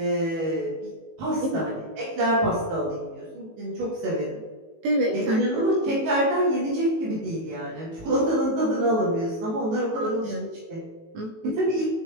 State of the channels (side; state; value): left; late; 18 ms